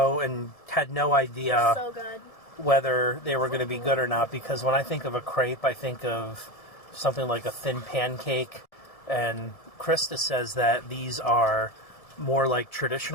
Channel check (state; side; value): late; right; 1.7 ms